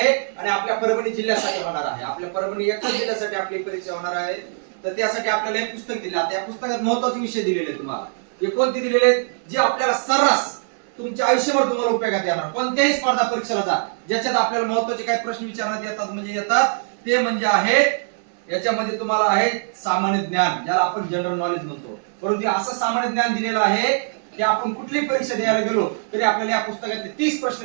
आणि आपल्या परभणी जिल्ह्यासाठी होणार आहे. आपल्या परभणी एकाच जिल्ह्यासाठी आपली परीक्षा होणार आहे. तर त्यासाठी आपल्याला एक पुस्तक दिले. आता या पुस्तकात महत्त्वाचे विषय दिलेले तुम्हाला. हे कोणते दिलेले? जे आपल्याला सर्रास तुमच्या आयुष्यभर तुम्हाला उपयोगात येणार. कोणत्याही स्पर्धा परीक्षेला जा ज्याच्यात आपल्याला महत्त्वाचे काही प्रश्न विचारण्यात येतात म्हणजे येतात ते म्हणजे आहे याच्यामध्ये तुम्हाला आहे सामान्य ज्ञान, ज्याला आपण जनरल नॉलेज म्हणतो. परंतु असं सामान्य ज्ञान दिलेलं आहे की आपण कुठलीही परीक्षा द्यायला गेलो तरी आपल्याला या पुस्तकातले 30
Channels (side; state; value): left; silent; 61 dB below the other